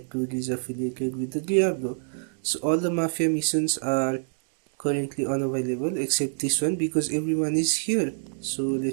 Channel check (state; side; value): silent; left; digital silence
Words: dude is affiliated with the Diablo. So all the mafia missions are currently unavailable except this one because everyone is here. So